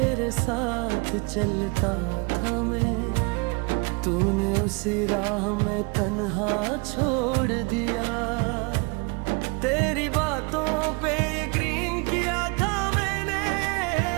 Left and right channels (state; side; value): quieter; left; 30.3 dB